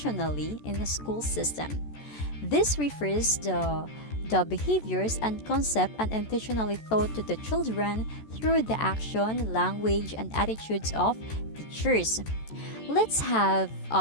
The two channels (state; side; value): late; right; 14 ms